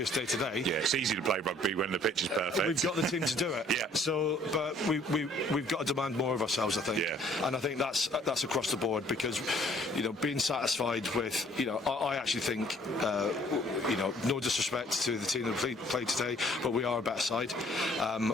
day today. Yeah, it's easy to play rugby when the pitch is perfect. We've got the team to do it. Yeah. So, but we've got to demand more of ourselves, I think. Yeah. And I think that's across the board, because you know being satisfied with I actually think no disrespect to the team that played today, but we are a better side.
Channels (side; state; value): both; normal; correlation 0.59